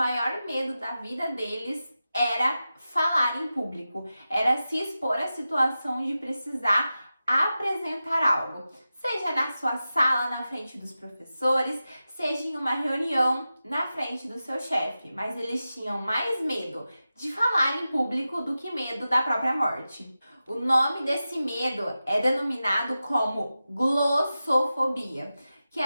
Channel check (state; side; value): inverted; both; correlation -0.93